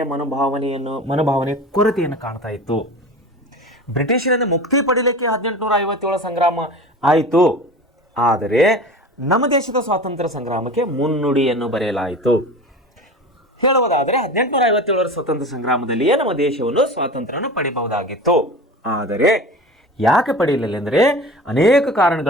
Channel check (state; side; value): normal; both; correlation 0.35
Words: ಮನೋಭಾವನೆ ಕೊರತೆಯನ್ನು ಕಾಣ್ತಾ ಇತ್ತು. ಬ್ರಿಟಿಷರಿಂದ ಮುಕ್ತಿ ಪಡೀಲಿಕ್ಕೆ 1857 ಸಂಗ್ರಾಮ ಆಯಿತು. ಆದರೆ ನಮ್ಮ ದೇಶದ ಸ್ವಾತಂತ್ರ್ಯ ಸಂಗ್ರಾಮಕ್ಕೆ ಮುನ್ನುಡಿಯನ್ನು ಬರೆಯಲಾಯಿತು. ಹೇಳುವುದಾದರೆ 1857ರ ಸ್ವತಂತ್ರ ಸಂಗ್ರಾಮದಲ್ಲಿಯೇ ನಮ್ಮ ದೇಶವನ್ನು ಸ್ವಾತಂತ್ರ್ಯವನ್ನು ಪಡಿಬಹುದಾಗಿತ್ತು. ಆದರೆ ಯಾಕೆ ಪಡೆಯಲಿಲ್ಲ ಅಂದರೆ ಅನೇಕ